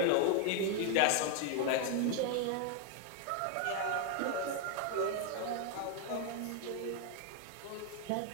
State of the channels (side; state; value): both; different; correlation 0.00